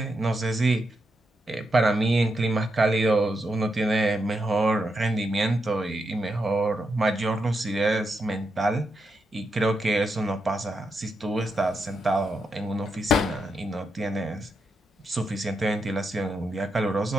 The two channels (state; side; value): normal; both; correlation 0.84